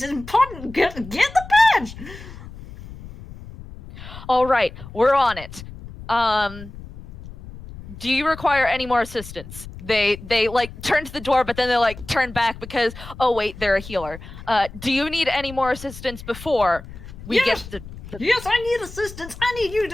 important! Get the badge! All right, we're on it. Do you require any more assistance? They like turn to the door, but then they like turn back because, oh wait, they're a healer. Do you need any more assistance before we get the... Yes, I need assistance. I need you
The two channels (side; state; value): left; noise; rumble, 15 dB below the sound